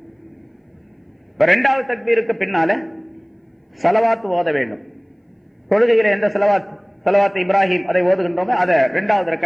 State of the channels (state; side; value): identical; both; correlation 1.00